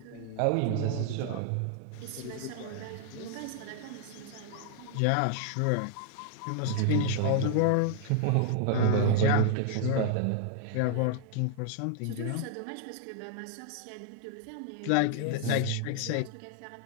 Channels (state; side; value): different; both; correlation -0.01